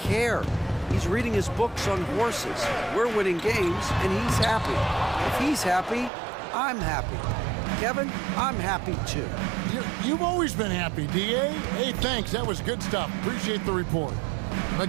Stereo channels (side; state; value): left; drops out; at 6.1 s